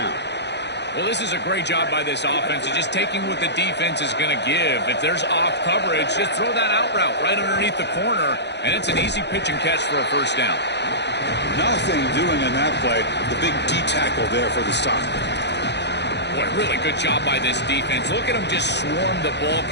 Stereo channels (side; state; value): right; late; 0.50 ms